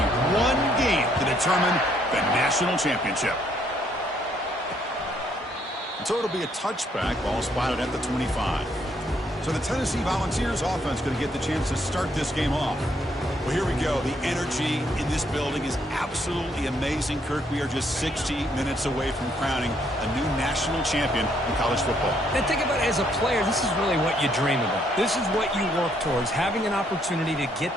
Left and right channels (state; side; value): normal; both; correlation 0.70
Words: One game to determine the national championship. So it'll be a touchback, ball spotted at the 25. So the Tennessee Volunteers offense going to get the chance to start this game off. Well, here we go. The energy in this building is absolutely amazing, Kirk. We are just 60 minutes away from crowning a new national champion in college football. And think about it as a player, this is really what you dream about. This is what you work towards, having an opportunity to